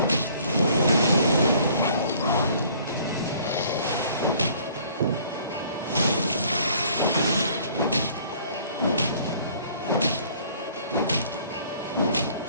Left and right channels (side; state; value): both; inverted; correlation -0.56